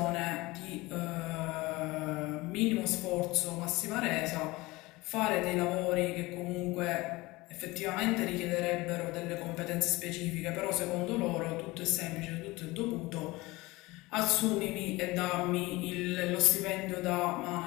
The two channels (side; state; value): right; quieter; 21.3 dB